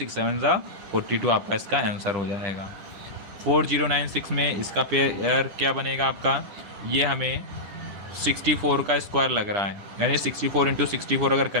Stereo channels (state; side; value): late; left; 9.9 ms